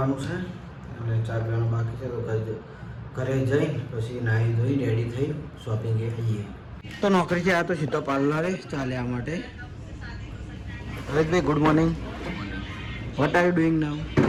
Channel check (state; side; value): identical; both; correlation 1.00